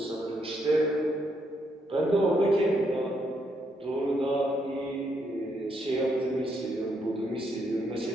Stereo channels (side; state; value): both; normal; correlation 0.76